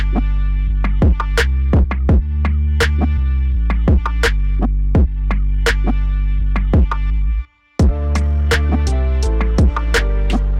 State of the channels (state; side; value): identical; both; correlation 1.00